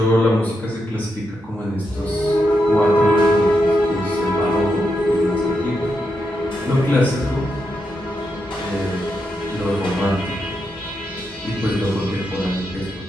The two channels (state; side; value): normal; both; correlation 0.84